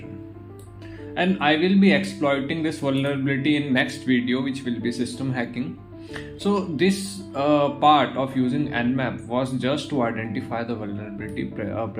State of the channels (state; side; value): identical; both; correlation 1.00